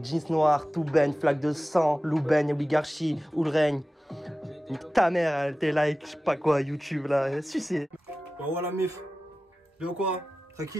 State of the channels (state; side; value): normal; both; correlation 0.95